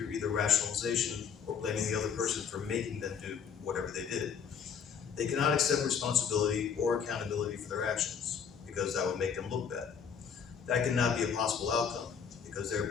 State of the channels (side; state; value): right; quieter; 7.0 dB